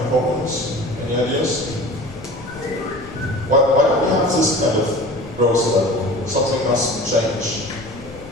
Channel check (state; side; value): noise; left; rumble, 18 dB below the sound